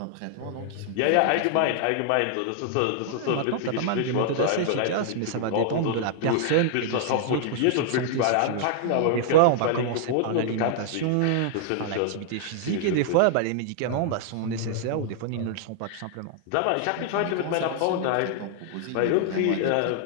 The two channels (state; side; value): different; both; correlation -0.01